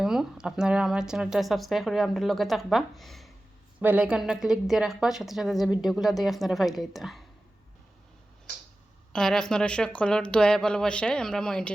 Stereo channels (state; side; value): normal; both; correlation 0.95